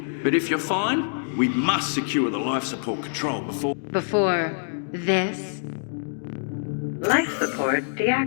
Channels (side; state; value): right; silent; digital silence